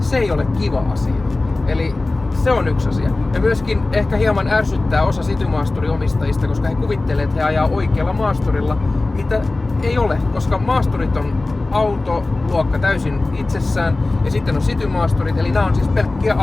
ei ole kiva asia. Eli se on yksi asia. Ja myöskin ehkä hieman ärsyttää osa City-maasturiomistajista, koska he kuvittelee, että he ajaa oikealla maasturilla, mitä ei ole, koska maasturit on autoluokka täysin itsessään ja sitten on City-maasturit, eli nämä on siis pelkkiä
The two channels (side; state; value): right; quieter; 3.1 dB